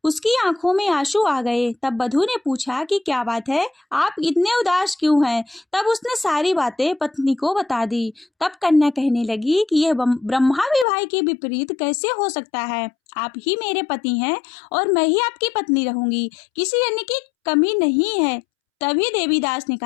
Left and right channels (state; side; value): drops out; right; at 10.9 s